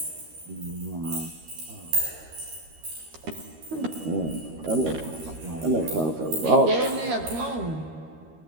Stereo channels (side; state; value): left; late; 13 ms